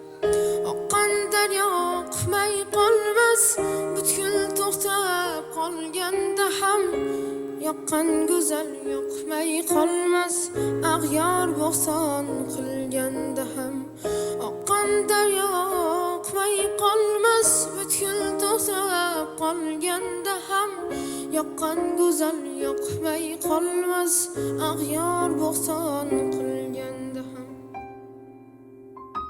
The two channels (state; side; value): identical; both; correlation 1.00